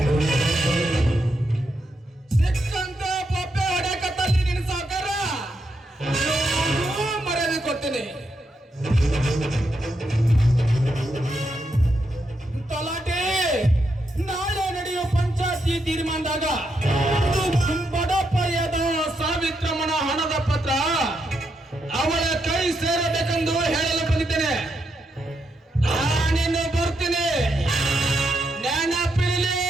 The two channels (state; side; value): normal; both; correlation 0.81